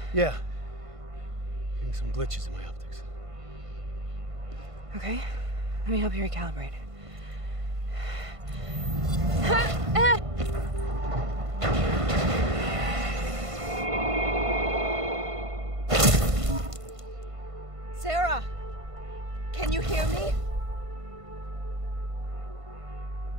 Yeah. Getting some glitches in my optics. Okay, let me help you recalibrate. Can you hear me?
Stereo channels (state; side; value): late; left; 1.5 ms